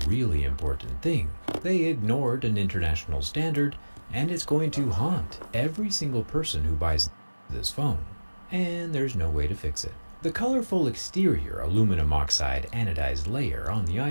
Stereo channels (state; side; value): inverted; both; correlation -1.00